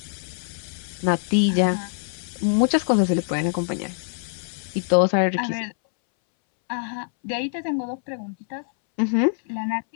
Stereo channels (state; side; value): silent; right; 62 dB below the other